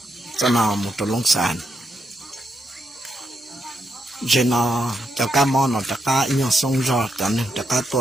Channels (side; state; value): both; normal; correlation 0.81